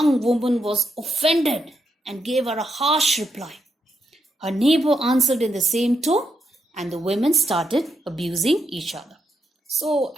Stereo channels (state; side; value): normal; both; correlation 0.81